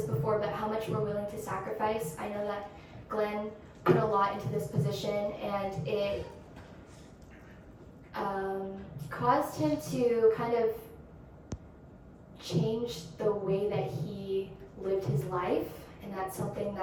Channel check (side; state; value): both; identical; correlation 1.00